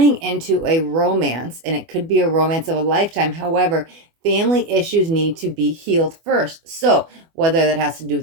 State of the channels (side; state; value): left; late; 24 ms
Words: into a romance, and it could be a romance of a lifetime. However, family issues need to be healed first. So whether that has to do